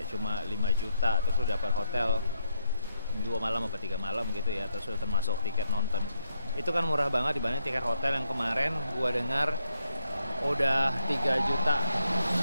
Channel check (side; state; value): both; inverted; correlation -0.77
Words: cuma 5 juta, terus lu dapat hotel 2 malam atau 3 malam gitu ya, terus udah termasuk tiket nonton. Itu kan murah banget dibanding tiket hotel yang kemarin gua dengar udah 3 juta